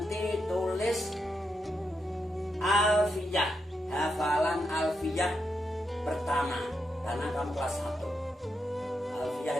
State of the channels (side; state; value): both; normal; correlation 0.84